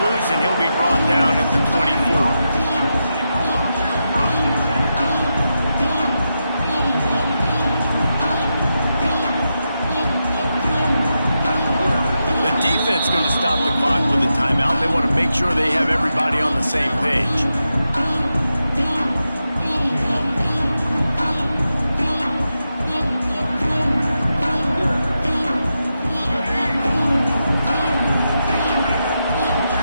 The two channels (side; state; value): both; inverted; correlation -0.87